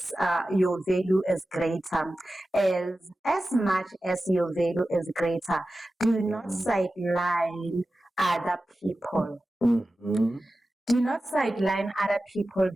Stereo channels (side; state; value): both; normal; correlation 0.94